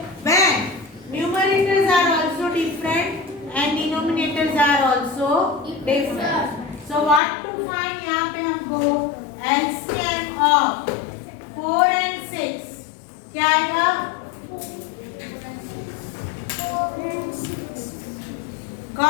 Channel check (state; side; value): drops out; right; at 7.2 s